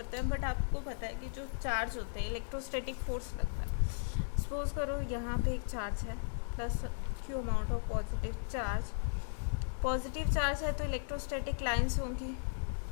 हैं, बट आपको पता है कि जो चार्ज होते हैं इलेक्ट्रोस्टैटिक फोर्स लगता है। सपोज करो यहाँ पे एक चार्ज है plus Q amount of positive charge है, तो इलेक्ट्रोस्टैटिक लाइंस होंगी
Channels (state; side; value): silent; right; digital silence